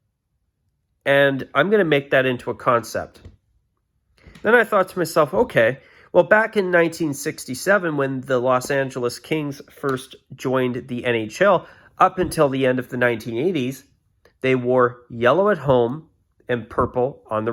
and I'm going to make that into a concept. Then I thought to myself, okay, well, back in 1967, when the Los Angeles Kings first joined the NHL, up until the end of the 1980s, they wore yellow at home and purple on the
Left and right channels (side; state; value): both; identical; correlation 1.00